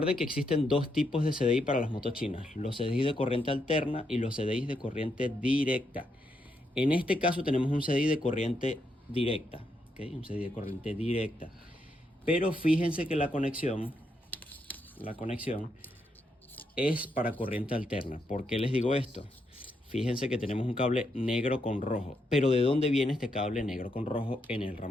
que existen 2 tipos de CDI para las motos chinas: los CDI de corriente alterna y los CDI de corriente directa. En este caso tenemos un CDI de corriente directa. ¿okay? Un CDI de corriente directa. Pero fíjense que la conexión es para corriente alterna. ¿Por qué les digo esto? Fíjense que tenemos un cable negro con rojo. Pero ¿de dónde viene este cable negro con rojo en el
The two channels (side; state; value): both; normal; correlation 0.80